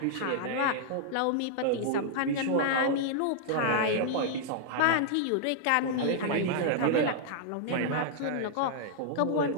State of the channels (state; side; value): different; both; correlation -0.01